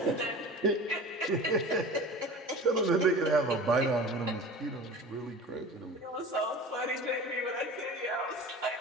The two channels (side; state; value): both; normal; correlation 0.38